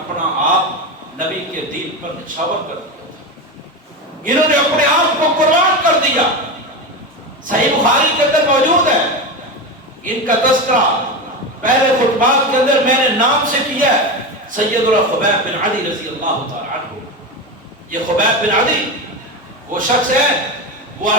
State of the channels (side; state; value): both; normal; correlation 0.19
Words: آپ نبی کے دین پر نچھاور کر دیا تھا، انہوں نے اپنے آپ کو قربان کر دیا۔ صحیح بخاری کے اندر موجود ہے، ان کا تذکرہ پہلے خطبات کے اندر میں نے نام سے کیا ہے، سیدنا خبیب بن عدی رضی اللہ تعالی عنہ۔ یہ خبیب بن عدی وہ شخص ہے، وہ